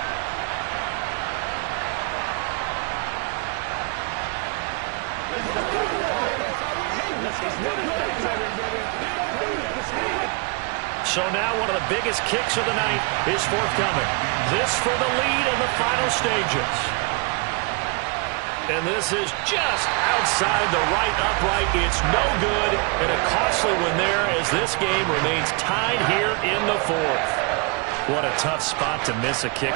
So now one of the biggest kicks of the night is forthcoming. This for the lead in the final stages. And this is just outside the right upright. It's no good, and a costly one there as this game remains tied here in the 4th. What a tough spot to miss a kick.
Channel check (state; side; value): quieter; left; 31.6 dB